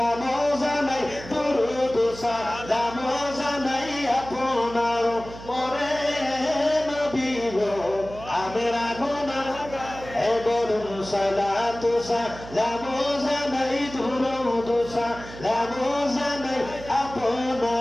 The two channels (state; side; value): noise; right; hum, 14 dB below the sound